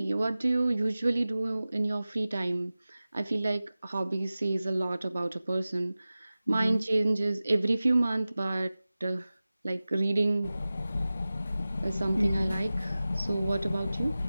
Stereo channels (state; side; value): inverted; both; correlation -0.97